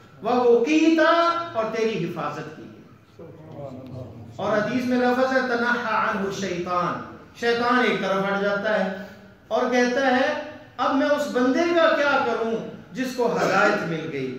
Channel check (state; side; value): identical; both; correlation 1.00